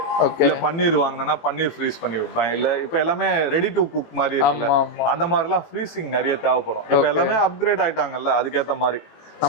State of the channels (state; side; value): late; right; 18 ms